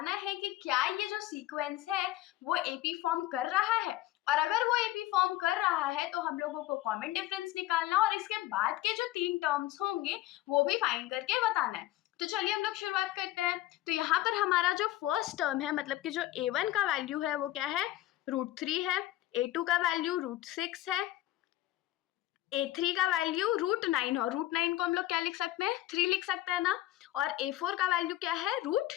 है कि क्या ये जो सीक्वेंस है वो एपी फॉर्म कर रहा है, और अगर वो एपी फॉर्म कर रहा है तो हम लोगों को कॉमन डिफरेंस निकालना और इसके बाद के जो 3 टर्म्स होंगे वो भी फाइंड करके बताना है। तो चलिए हम लोग शुरुआत करते हैं। तो यहाँ पर हमारा जो फर्स्ट टर्म है, मतलब कि जो a1 का वैल्यू है वो क्या है, √3 है। a2 का वैल्यू √6 है। a3 का वैल्यू √9 और √9 को हम लोग क्या लिख सकते हैं, 3 लिख सकते हैं ना। और a4 का वैल्यू क्या है,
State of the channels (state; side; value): quieter; right; 15.4 dB